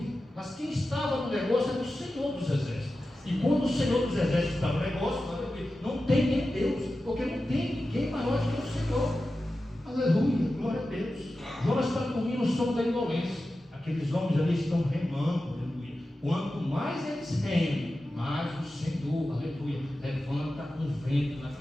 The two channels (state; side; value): normal; both; correlation 0.93